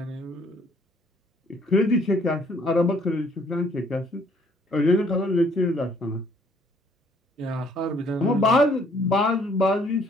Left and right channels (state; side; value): normal; both; correlation 0.63